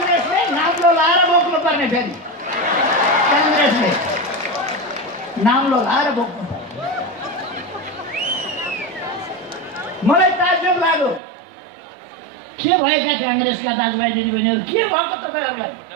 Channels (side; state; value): left; drops out; at 11.2 s